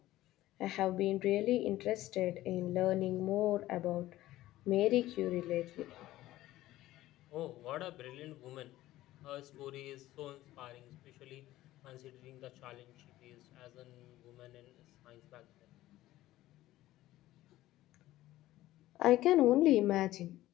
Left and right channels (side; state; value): right; quieter; 15.6 dB